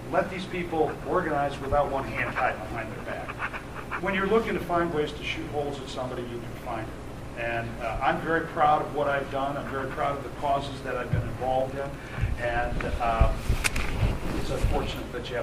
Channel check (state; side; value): identical; both; correlation 1.00